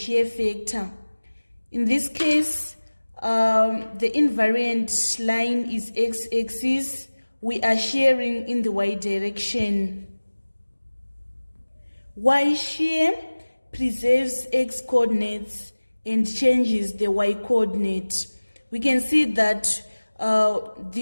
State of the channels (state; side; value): inverted; both; correlation -1.00